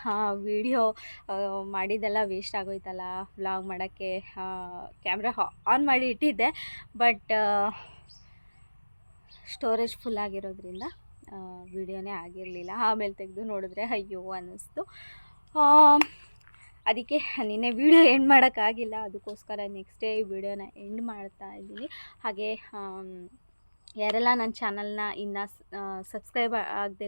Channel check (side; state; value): both; inverted; correlation -1.00